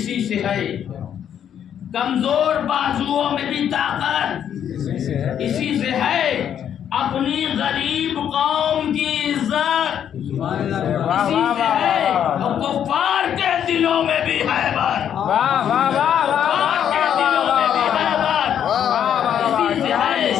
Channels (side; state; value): right; quieter; 9.3 dB